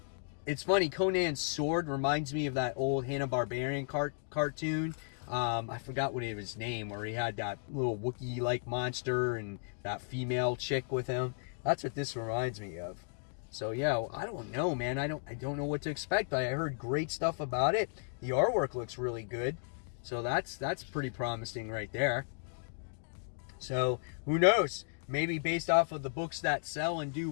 It's funny, Conan's sword reminds me of that old Hanna-Barbera cartoon. I forgot what his name, where he had that little Wookiee-like monster and that female chick with him. That's what this reminds me of. So yeah, I don't know, man. I don't know what to expect, but I heard great stuff about it. The artwork looks really good. So that's pretty promising right there. So who knows? Maybe based off of the books that sell and do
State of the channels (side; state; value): right; silent; digital silence